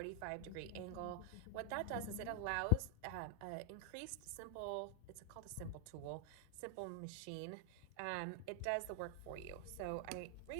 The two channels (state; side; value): different; both; correlation 0.00